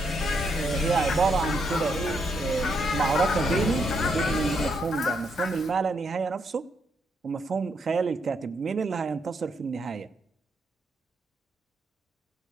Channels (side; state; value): both; normal; correlation 0.77